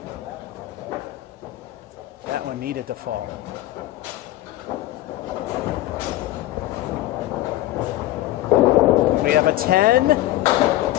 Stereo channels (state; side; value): quieter; right; 15.5 dB